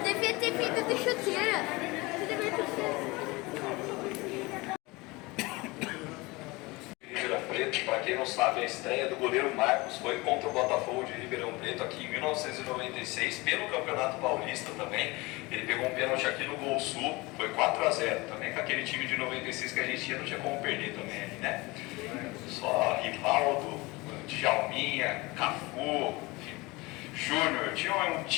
Devia ter vindo de chuteira. Você devia ter feito. Preto, para quem não sabe, a estreia do goleiro Marcos foi contra o Botafogo de Ribeirão Preto aqui em 1996, pelo Campeonato Paulista também. Ele pegou um pênalti aqui no Gol Sul, foi 4-0 também, com aquele time de 96 que a gente tinha, não tinha como perder também ali, né? Só Rivaldo, Djalminha, Cafu, Júnior, tinha um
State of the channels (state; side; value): quieter; right; 23.4 dB